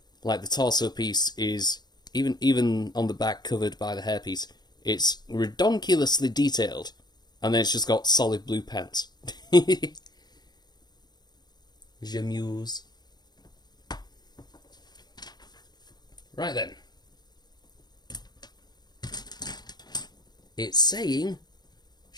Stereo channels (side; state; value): right; late; 0.20 ms